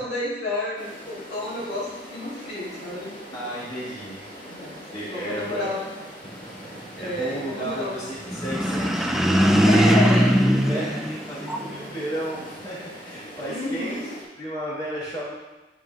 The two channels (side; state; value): both; normal; correlation 0.77